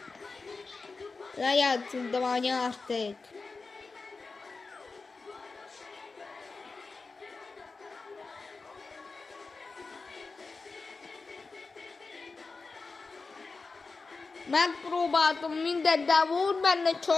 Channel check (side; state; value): right; quieter; 4.1 dB